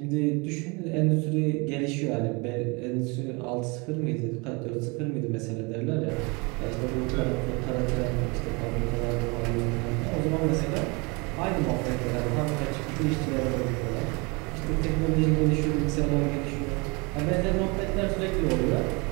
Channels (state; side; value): quieter; left; 28.7 dB